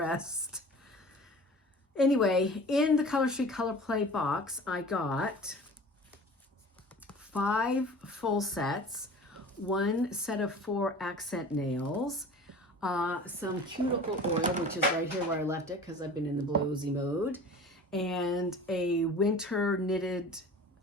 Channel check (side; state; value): both; normal; correlation 0.41